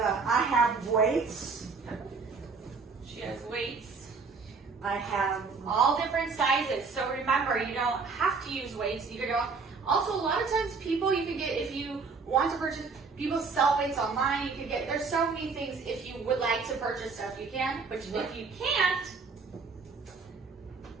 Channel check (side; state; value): left; quieter; 4.7 dB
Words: have weights. She has weights. I have all different sizes. So remember, you don't have to use weights. You can go. Also, a lot of times people you can get, if you want to purchase, people sell weights online. You can get, there's so many things. If you would like to purchase stuff, you can. But if you can't,